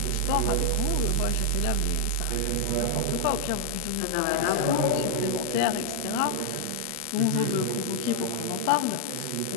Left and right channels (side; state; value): both; different; correlation 0.00